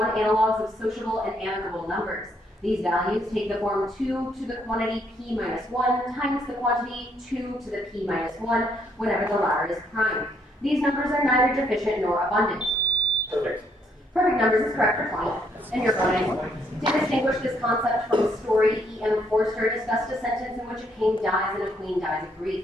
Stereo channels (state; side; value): normal; both; correlation 0.70